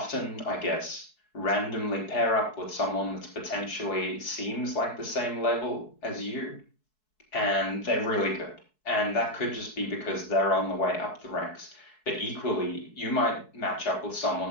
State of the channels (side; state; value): right; late; 4.7 ms